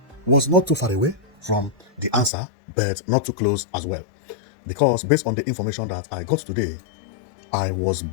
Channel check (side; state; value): right; drops out; at 2.3 s